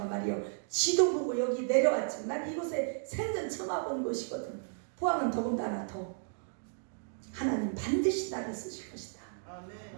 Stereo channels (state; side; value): silent; left; digital silence